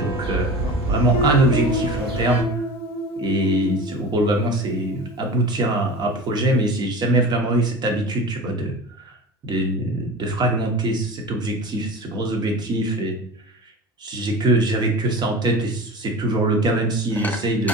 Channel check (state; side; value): normal; both; correlation 0.34